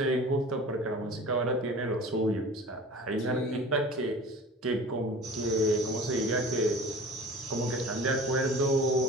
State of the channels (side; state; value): both; normal; correlation 0.41